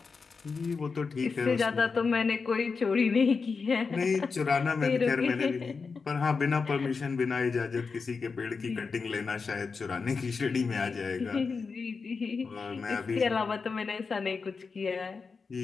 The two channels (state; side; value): quieter; right; 4.9 dB